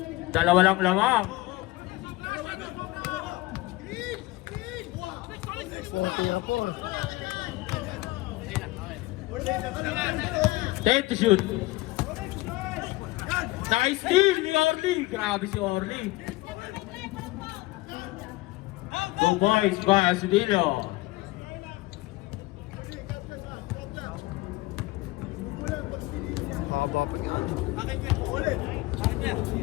Dalawa lang lamang. Ten to shoot. Nice steal ni Orly. Grabe si Orly. 2 points by Astudillo.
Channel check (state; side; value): quieter; right; 20.4 dB